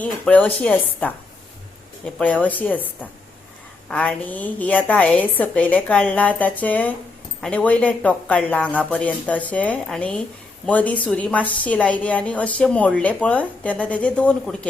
पळय अशी आसता, हे पळय अशी आसता आनी ही आतां हांवें सकयले काडला ताचे आनी वयले टोक काडला हांगा पर्यंत अशें आनी मदीं सुरी मातशी लायली आनी अशें मोडले पळय तेन्ना तेजे 2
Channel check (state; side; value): quieter; right; 3.6 dB